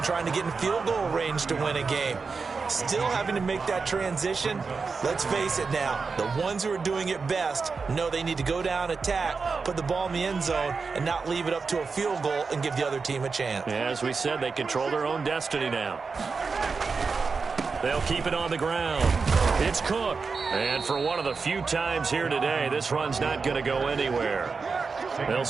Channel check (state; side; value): quieter; left; 4.8 dB